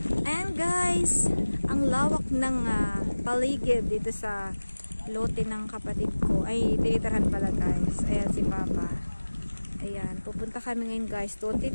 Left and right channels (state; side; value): inverted; both; correlation -1.00